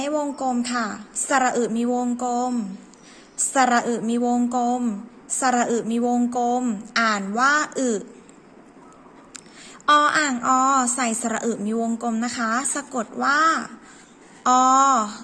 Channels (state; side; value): identical; both; correlation 1.00